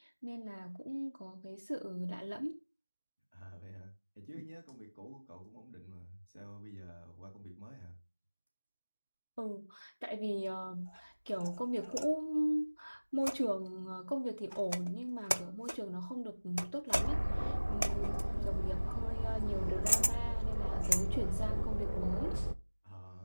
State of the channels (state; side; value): inverted; both; correlation -1.00